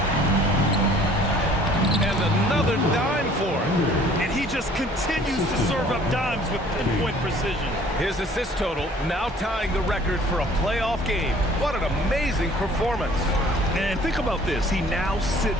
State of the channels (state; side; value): normal; both; correlation 0.54